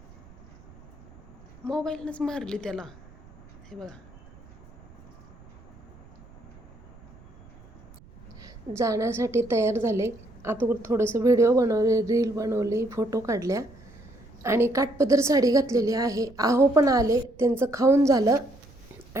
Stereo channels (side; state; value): right; noise; rumble, 23 dB below the sound